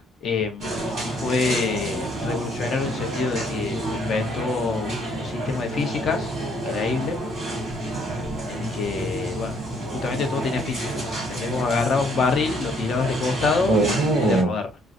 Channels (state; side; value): normal; both; correlation 0.66